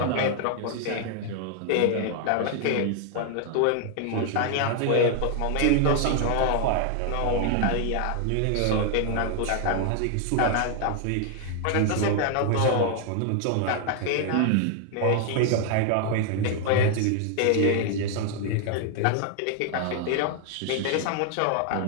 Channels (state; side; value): different; both; correlation 0.00